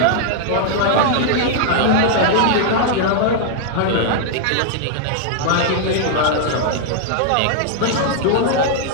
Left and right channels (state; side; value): different; both; correlation -0.01